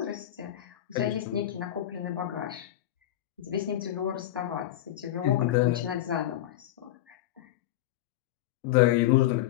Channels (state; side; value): quieter; right; 13.2 dB